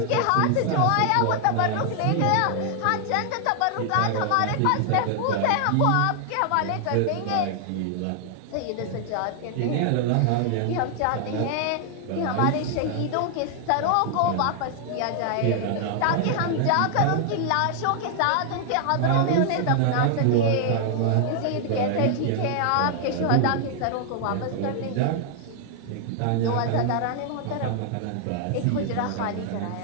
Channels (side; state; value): both; different; correlation 0.00